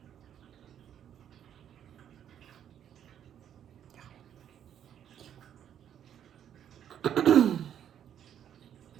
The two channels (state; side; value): quieter; left; 9.6 dB